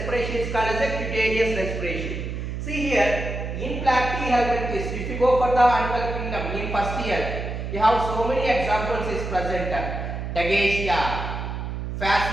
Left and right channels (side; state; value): right; noise; hum, 5 dB below the sound